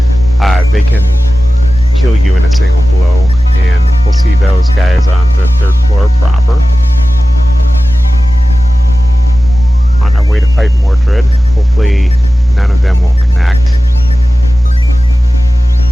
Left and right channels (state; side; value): normal; both; correlation 0.95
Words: they can kill you in a single blow, and we'll see those guys on the third floor proper. On our way to fight Mordred, hopefully none of them will connect.